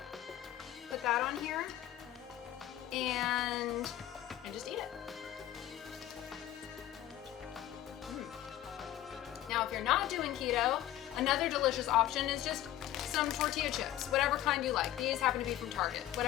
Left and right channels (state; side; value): quieter; right; 13.1 dB